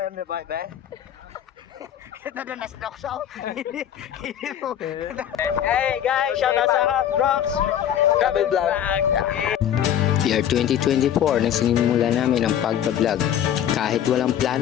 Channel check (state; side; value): quieter; right; 10.1 dB